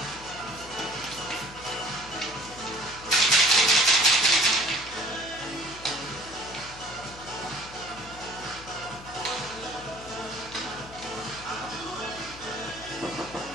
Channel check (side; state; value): left; noise; hum, 17 dB below the sound